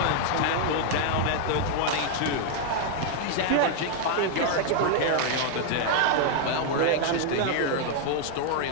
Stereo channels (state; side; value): different; both; correlation 0.00